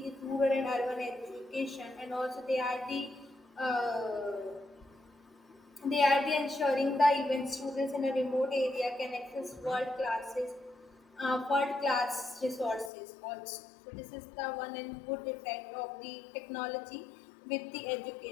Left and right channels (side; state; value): right; drops out; at 12.9 s